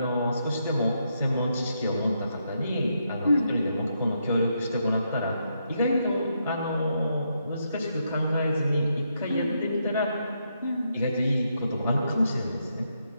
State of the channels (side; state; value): both; inverted; correlation -0.79